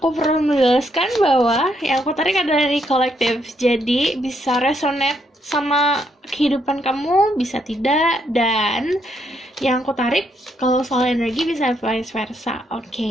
perlu menjelaskan bahwa yang aku tarik adalah energi kolektif. Jadi bisa resonate sama kehidupan kamu, bisa tidak. Dan yang aku tarik kalau soal energi bisa vice versa.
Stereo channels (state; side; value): normal; both; correlation 0.75